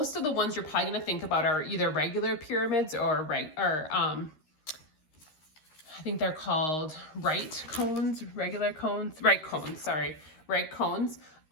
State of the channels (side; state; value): right; late; 13 ms